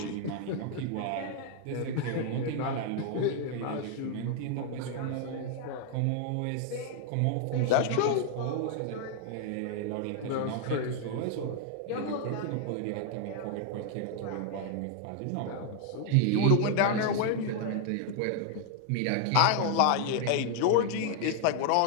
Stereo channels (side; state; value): both; different; correlation 0.00